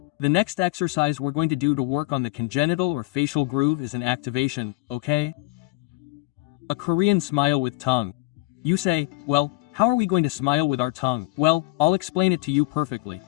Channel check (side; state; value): right; quieter; 20.8 dB